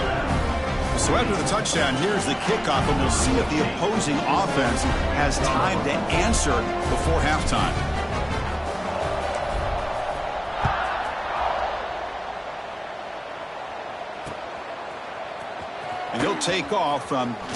So after the touchdown, here's the kickoff, and we'll see if the opposing offense has time to answer before halftime. And he'll take off from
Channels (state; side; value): identical; both; correlation 1.00